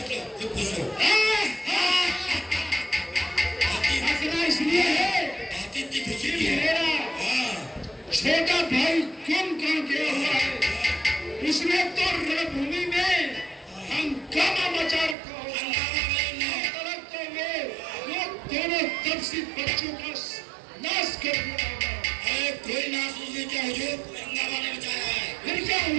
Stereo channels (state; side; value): drops out; left; at 15.2 s